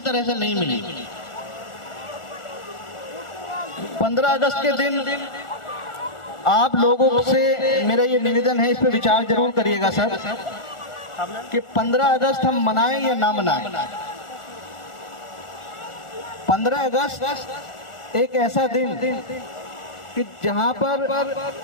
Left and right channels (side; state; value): right; late; 1.4 ms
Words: तरह से नहीं मिली। 15 अगस्त के दिन आप लोगों से मेरा ये निवेदन है, इस पे विचार जरूर करिएगा सर, कि 15 अगस्त हम मनाएं या ना मनाएं। 15 अगस्त एक ऐसा दिन कि जहां पर